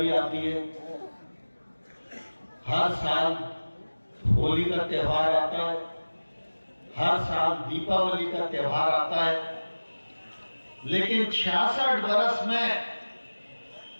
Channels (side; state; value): both; inverted; correlation -1.00